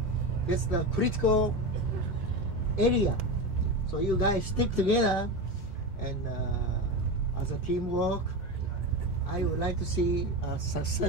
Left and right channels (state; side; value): normal; both; correlation 0.20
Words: that's the critical area. So you guys stick together, and as a teamwork, I would like to see a